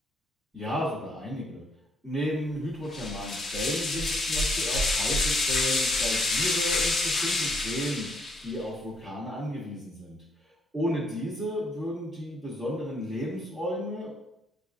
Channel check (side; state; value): both; normal; correlation 0.70